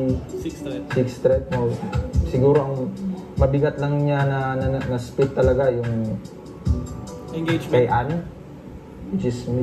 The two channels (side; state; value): both; identical; correlation 1.00